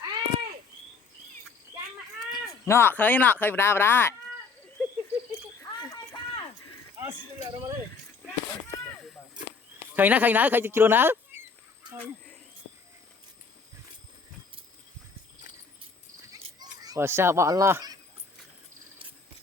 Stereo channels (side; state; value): right; quieter; 4.8 dB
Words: nọ khơi vào đây khơi nó khơi chưa nó và sao bọn lo